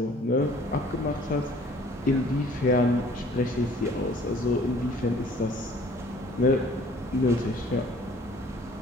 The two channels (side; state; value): both; normal; correlation 0.54